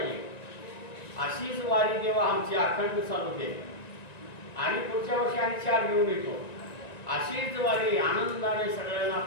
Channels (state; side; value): late; right; 1.9 ms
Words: अशीच वारी जेव्हा आमची अखंड चालू दे आणि पुढच्या वर्षी आणि 4 घेऊन येतो. अशीच वारी आनंदाने सगळ्यांना